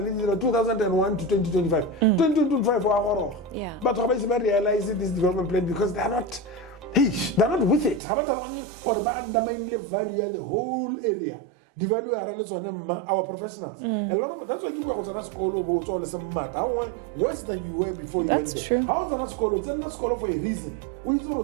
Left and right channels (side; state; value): left; drops out; at 8.0 s